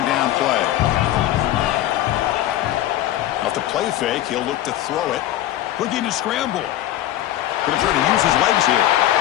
down play. off the play fake. He'll look to throw it. Looking to scramble. Going to try to use his legs here.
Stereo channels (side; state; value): right; quieter; 13.5 dB